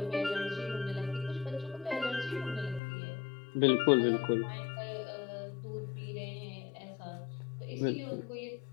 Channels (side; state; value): right; drops out; at 2.8 s